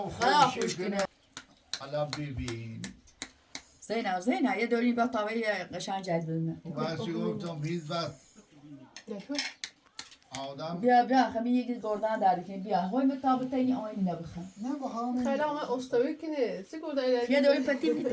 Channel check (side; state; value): both; identical; correlation 1.00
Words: خوب کنه حالا ببین زینب یه دوری با تاوی قشنگ جد بزنه وقتی گفتم هیچ وقت آدم بیا خمی یکی گردن داری کنی بیا های مطابقه این آینی نبخم نه با همه خیلی همه استوی کنه سگاه داری یه دوری پتی